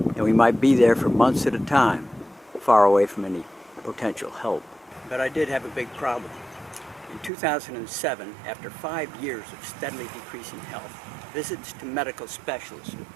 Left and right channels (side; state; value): left; drops out; at 7.3 s